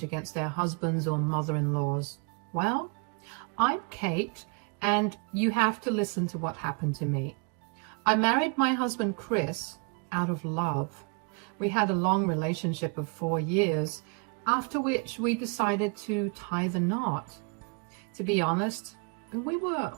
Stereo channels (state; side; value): quieter; left; 34.2 dB